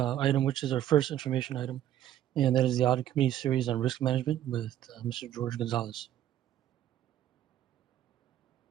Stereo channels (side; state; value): left; quieter; 11.9 dB